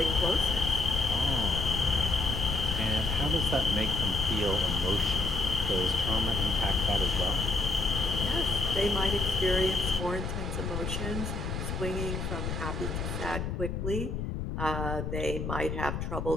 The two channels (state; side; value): noise; left; rumble, 3 dB below the sound